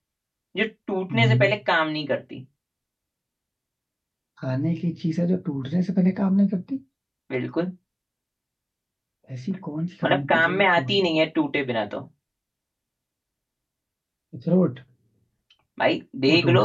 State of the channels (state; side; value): identical; both; correlation 1.00